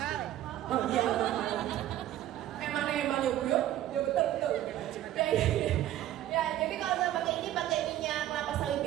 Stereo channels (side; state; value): left; quieter; 13.0 dB